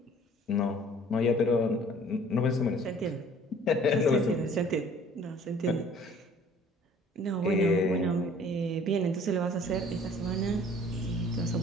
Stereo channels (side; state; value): both; normal; correlation 0.53